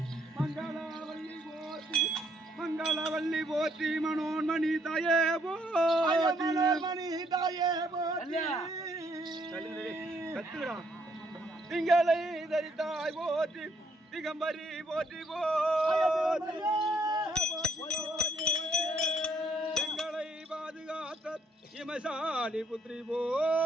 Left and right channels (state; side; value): normal; both; correlation 0.70